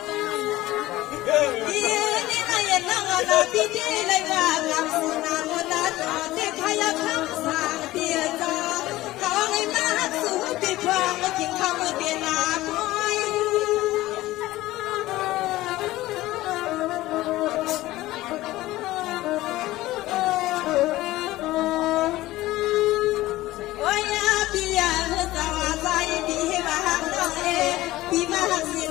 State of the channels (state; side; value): quieter; right; 17.0 dB